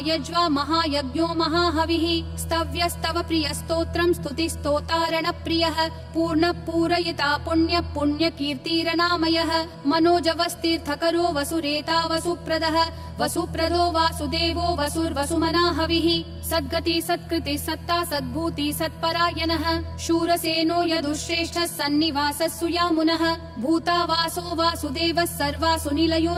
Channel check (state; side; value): identical; both; correlation 1.00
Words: महायज्ञो महाहविः स्तव्यस्तव प्रियस्तोत्रं स्तुतिस्तोतारण प्रियः पूर्ण पूरयिता पुण्य पुण्यकीर्तिरनामयः मनोजवस्तीर्थकरो वसुरेता वसुप्रदः वसुप्रदो वासुदेवो वसुर्वसुमनाहविः सद्गति सत्कृति सत्ता सद्भूति सत्परायणः शूरसेनो यदुश्रेष्ठः सन्निवासः सुयामुनः भूतावासो वासुदेवः सर्वासु निलयो